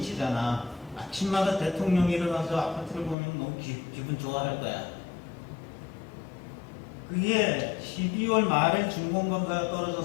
아침마다 대통령이 일어나서 아파트를 보면 너무 기분 좋아할 거야. 그게 12월 말에 준공검사가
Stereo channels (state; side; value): drops out; right; at 3.2 s